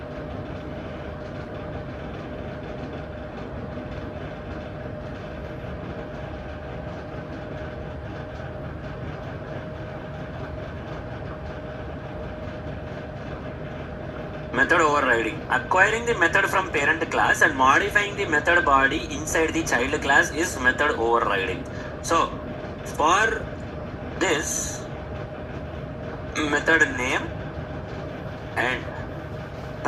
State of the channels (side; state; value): both; identical; correlation 1.00